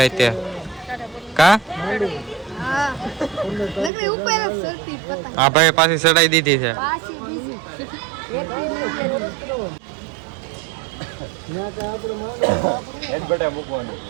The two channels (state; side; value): drops out; left; at 3.9 s